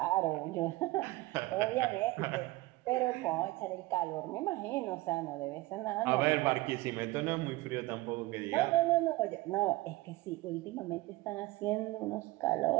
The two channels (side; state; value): left; quieter; 19.9 dB